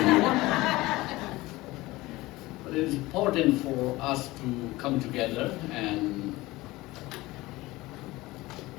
here. But it is important for us to come together and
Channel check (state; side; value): quieter; right; 19.6 dB